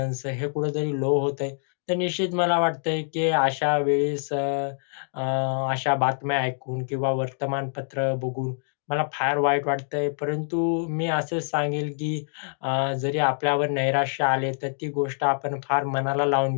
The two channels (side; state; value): right; silent; digital silence